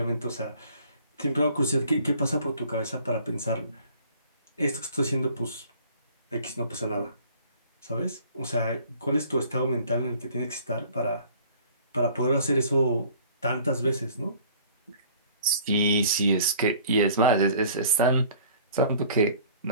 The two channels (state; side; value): inverted; both; correlation -0.52